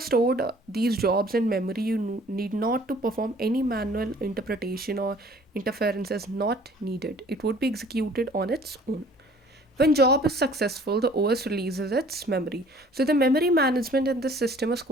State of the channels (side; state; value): both; normal; correlation 0.53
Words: stored these jobs in memory, you need not to perform any manual interpretation or interference is not needed. It would be executed on its own. When job is successful, the OS releases its memory. So the memory management in this system is